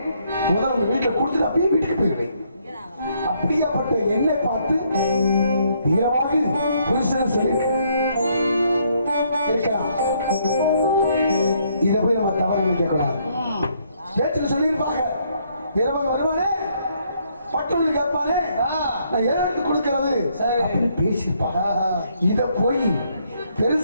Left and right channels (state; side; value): inverted; both; correlation -0.70